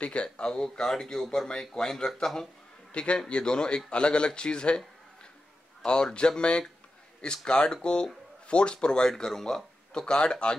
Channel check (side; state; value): both; normal; correlation 0.91